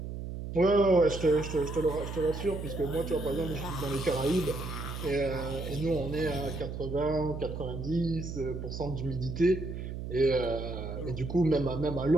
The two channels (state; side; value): noise; right; hum, 7 dB below the sound